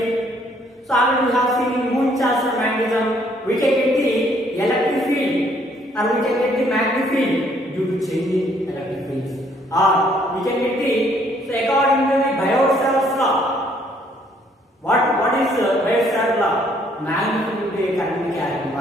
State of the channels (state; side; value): normal; both; correlation 0.65